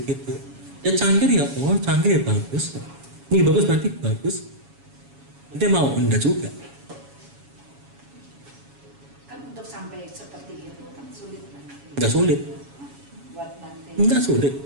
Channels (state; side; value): late; left; 7.2 ms